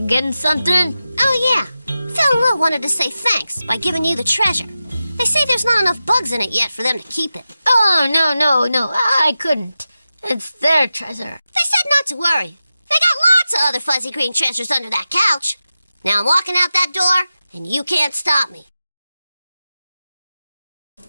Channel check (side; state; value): both; inverted; correlation -0.93